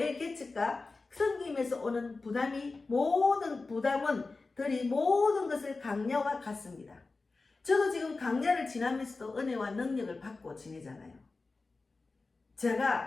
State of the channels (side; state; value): right; quieter; 3.7 dB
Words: 개척과 섬김에서 오는 모든 부담원들이 모든 것을 강야와 같습니다. 저도 지금 강야를 지나면서도 은혜와 능력을 받고 지내잖아요.